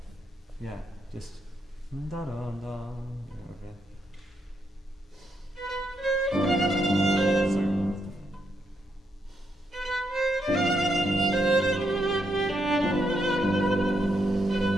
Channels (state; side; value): normal; both; correlation 0.79